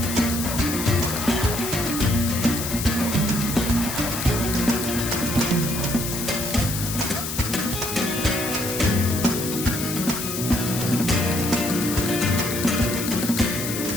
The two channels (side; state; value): left; noise; hiss, 5 dB below the sound